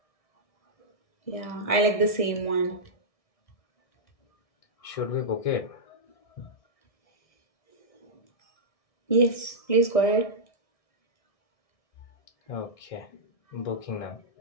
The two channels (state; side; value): late; right; 1.6 ms